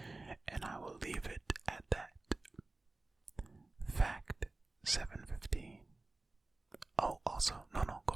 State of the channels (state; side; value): quieter; left; 3.1 dB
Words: And I will leave it at that. Fact 715. Oh, also, no, go